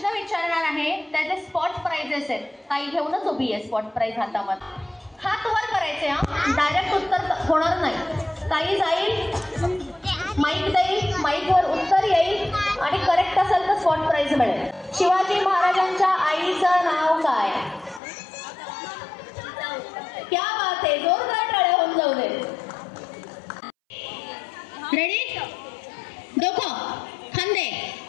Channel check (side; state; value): right; drops out; at 18.0 s